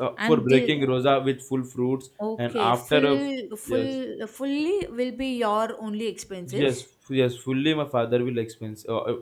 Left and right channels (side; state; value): both; identical; correlation 1.00